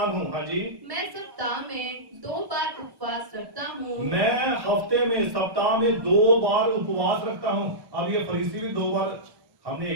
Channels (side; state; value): left; late; 1.1 ms